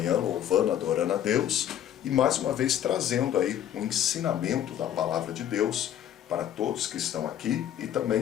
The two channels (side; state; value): right; quieter; 10.7 dB